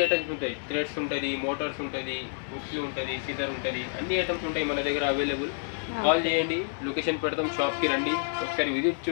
ఐటమ్స్ ఉంటాయి, థ్రెడ్స్ ఉంటుంది, మోటార్స్ ఉంటుంది, హుక్స్ ఉంటుంది, సిజర్ ఉంటుంది, అన్ని ఐటమ్స్ ఉంటాయి మన దగ్గర అవైలబుల్. కాల్ చేయండి, లొకేషన్ పెడతాం, షాప్కి రండి, ఒకసారి విజిట్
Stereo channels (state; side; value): silent; right; 58 dB below the other